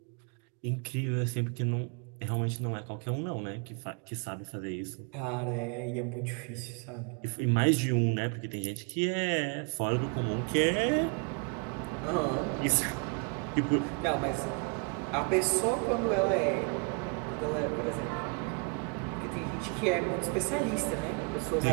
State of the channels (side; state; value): left; quieter; 34.6 dB